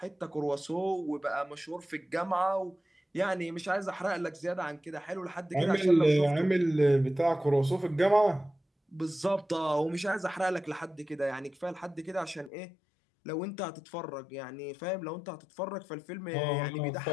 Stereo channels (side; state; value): right; drops out; at 12.5 s